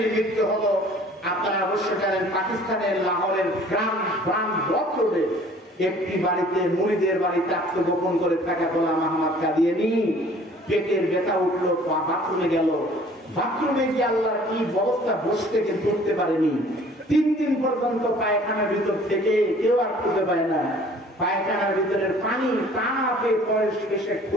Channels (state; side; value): normal; both; correlation 0.52